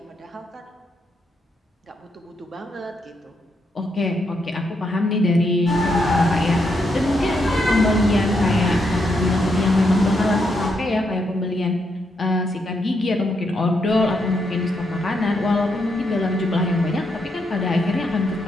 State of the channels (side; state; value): both; normal; correlation 0.79